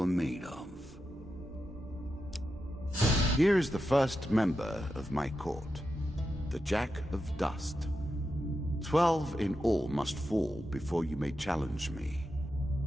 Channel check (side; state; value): both; normal; correlation 0.88